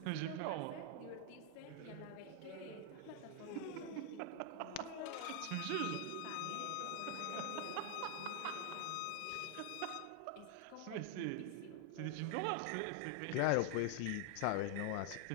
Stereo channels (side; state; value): both; different; correlation 0.00